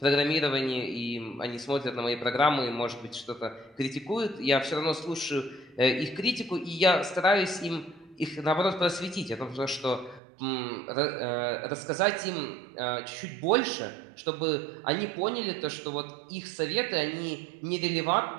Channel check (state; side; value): drops out; left; at 10.2 s